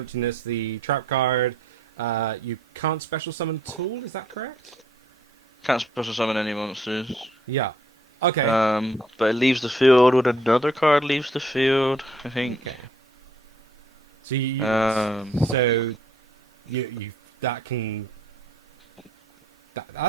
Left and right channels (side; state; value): both; normal; correlation 0.64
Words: the trap card. You can't special summon tool, is that correct? Can't special summon any monsters. Yeah. Okay. But it leaves the field when another card leaves the field, I think. Okay. So you that can.